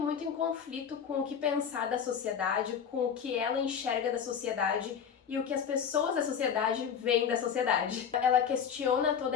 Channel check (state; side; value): quieter; right; 7.5 dB